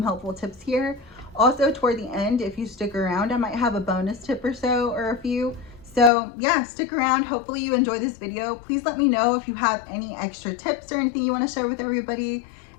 helpful tips here. Also, toward the end, if you stick around, I might have a bonus tip or so, or a few. So yeah, stick around. Hopefully you enjoy this video. Please let me know if you have any extra tips or anything you want to share with everybody.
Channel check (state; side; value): drops out; right; at 6.1 s